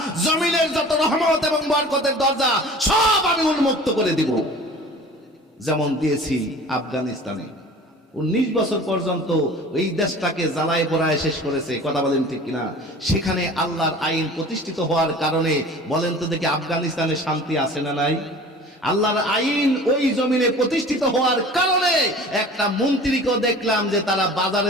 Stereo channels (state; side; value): normal; both; correlation 0.42